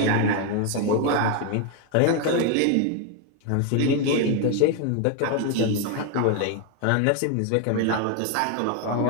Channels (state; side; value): different; both; correlation 0.01